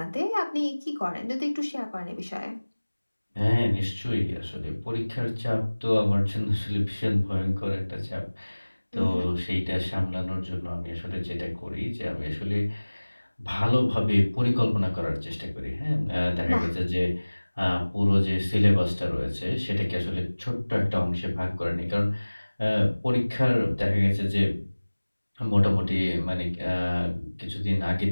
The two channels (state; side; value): inverted; both; correlation -1.00